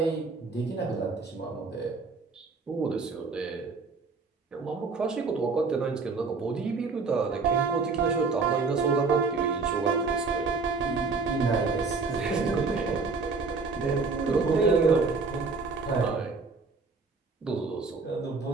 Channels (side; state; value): left; quieter; 4.3 dB